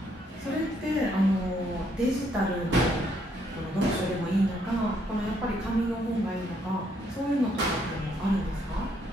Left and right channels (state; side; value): normal; both; correlation 0.71